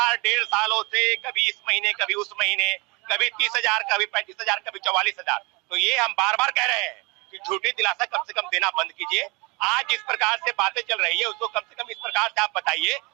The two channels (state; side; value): quieter; left; 27.3 dB